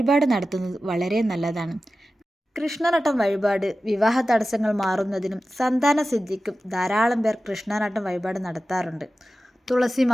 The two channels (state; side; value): normal; both; correlation 0.94